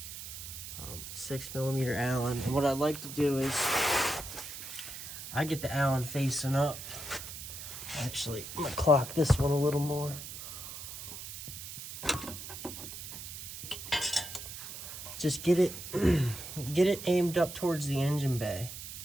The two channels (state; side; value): noise; right; hiss, 10 dB below the sound